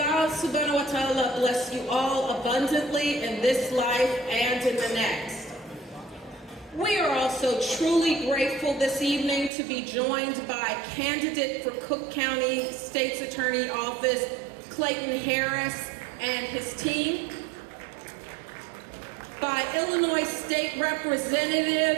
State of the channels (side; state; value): left; drops out; at 9.5 s